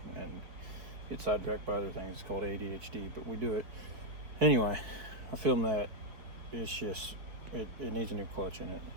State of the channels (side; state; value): left; late; 4.5 ms